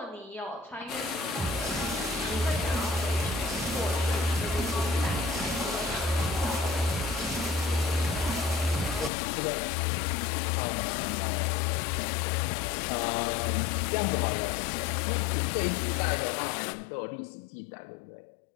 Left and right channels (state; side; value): drops out; right; at 9.1 s